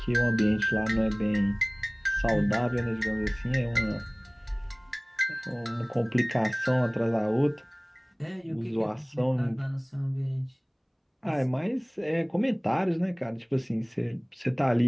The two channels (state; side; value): identical; both; correlation 1.00